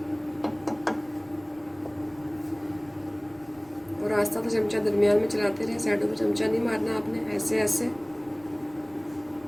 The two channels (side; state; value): left; noise; rumble, 28 dB below the sound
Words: और आस्ता तो चमचा दरमियान में चलाते रहे, साइडों पे चमचा नहीं मारना आपने, ऐसे ऐसे